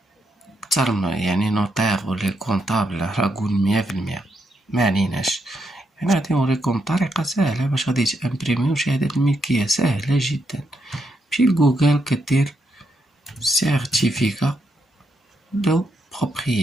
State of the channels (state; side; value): normal; both; correlation 0.80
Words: كتر يعني نوتير ولا كونطابل راه قول 100%. ما عليناش، يعني غادي نوريكم طريقة سهلة باش غادي تامبريميو شهادة الملكية سهلة جدا. مشي لجوجل كدير سيرتيفيكا دو